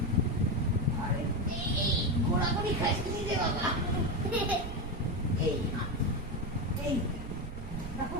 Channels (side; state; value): right; noise; rumble, 8 dB below the sound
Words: আরে এই ঘোরাঘুরি খাইছে নিজে বাবা। এই এই রাখো,